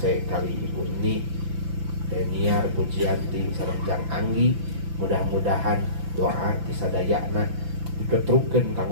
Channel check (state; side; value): late; left; 5.9 ms